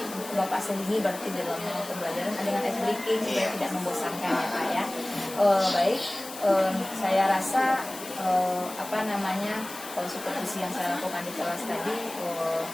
Bapak sendiri berarti dalam pembelajaran dengan ice breaking supaya tidak membosankan ya Pak ya. Baik, saya rasa kalau supervisi yang saya lakukan di kelas tadi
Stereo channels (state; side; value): noise; left; hiss, 13 dB below the sound